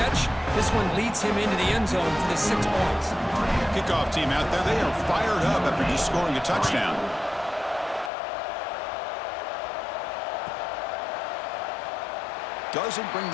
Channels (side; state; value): right; drops out; at 8.1 s